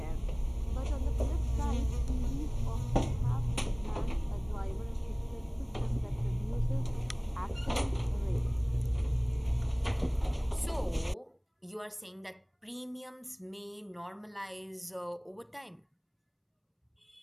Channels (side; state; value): both; identical; correlation 1.00